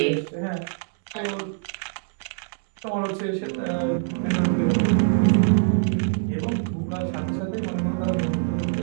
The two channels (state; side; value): silent; left; digital silence